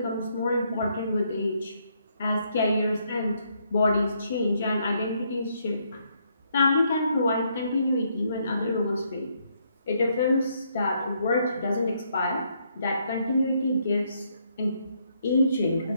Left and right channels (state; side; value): inverted; both; correlation -0.73